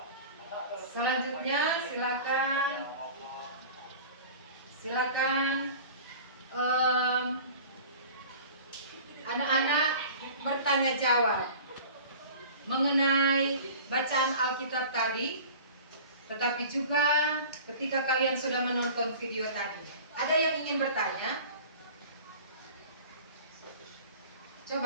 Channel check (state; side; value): inverted; both; correlation -0.41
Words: silakan anak-anak bertanya jawab mengenai bacaan Alkitab tadi, tetapi juga ketika kalian sudah menonton video tadi. Ada yang ingin bertanya?